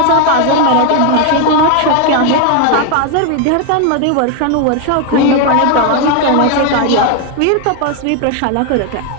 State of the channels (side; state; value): both; different; correlation 0.01